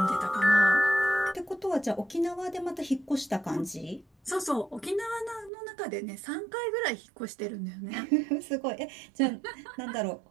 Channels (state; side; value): drops out; left; at 5.5 s